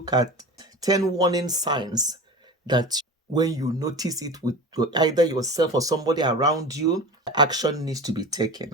at 10 warning signs that when you notice it with either yourself or somebody around you, action needs to be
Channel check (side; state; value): both; normal; correlation 0.32